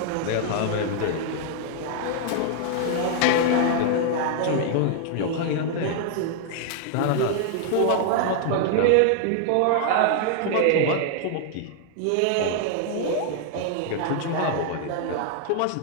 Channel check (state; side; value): different; both; correlation 0.00